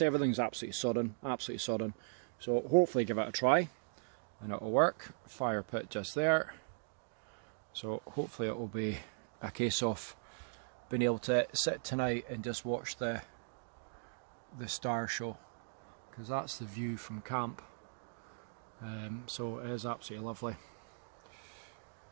everything's absolutely sodden, so hopefully give it a try and it'll work. Fire pit just there, so hopefully it will be a case of being able to sit tonight and just watch the star show, because that's the view from camp. So it is absolutely lovely.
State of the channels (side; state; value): left; silent; digital silence